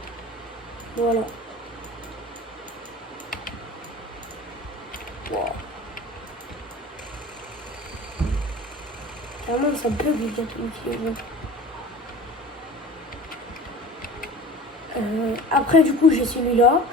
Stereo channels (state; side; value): normal; both; correlation 0.40